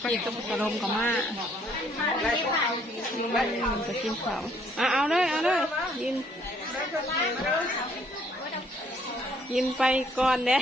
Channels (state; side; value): normal; both; correlation 0.64